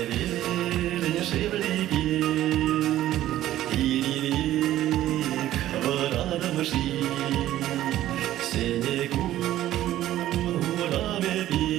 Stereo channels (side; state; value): left; quieter; 13.6 dB